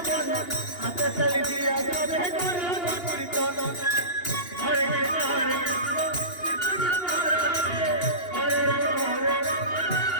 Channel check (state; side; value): late; right; 2.8 ms